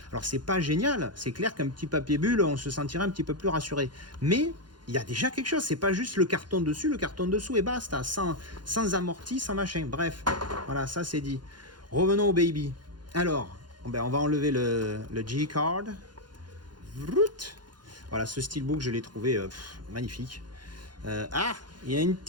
Alors c'est pas génial. C'est clair qu'un petit papier bulle, on se sentirait un petit peu plus rassuré. Mais il y a déjà quelque chose. C'est pas juste le carton dessus, le carton dessous et basta. Sans amorti, sans machin. Bref, voilà, ça c'est dit. Revenons au baby. Alors, ben on va enlever le G-card. Voilà, ce steelbook, je l'ai trouvé magnifique. Ah, il y a une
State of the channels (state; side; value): late; left; 0.71 ms